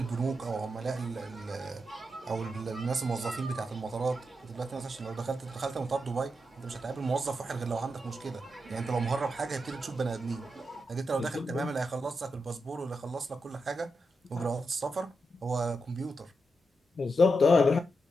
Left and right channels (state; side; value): normal; both; correlation 0.86